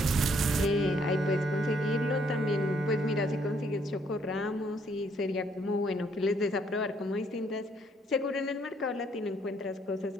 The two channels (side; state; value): both; normal; correlation 0.68